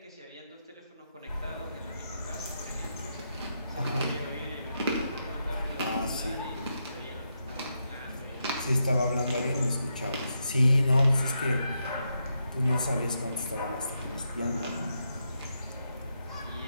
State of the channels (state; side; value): inverted; both; correlation -0.83